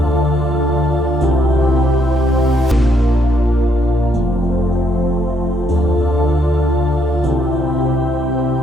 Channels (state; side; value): normal; both; correlation 0.73